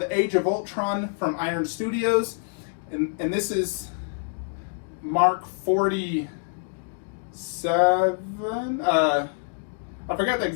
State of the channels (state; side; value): silent; right; digital silence